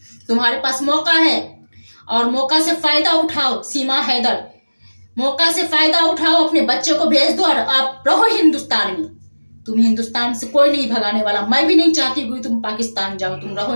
तुम्हारे पास मौका है और मौका से फायदा उठाओ। सीमा हैदर, मौका से फायदा उठाओ, अपने बच्चे को भेज दो और आप रहो हिंदुस्तान में। तुम हिंदुस्तान से कोई नहीं भगाने वाला। मैं भी नहीं चाहती हुई तुम पाकिस्तान जाओ, तुम रहो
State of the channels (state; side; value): inverted; both; correlation -1.00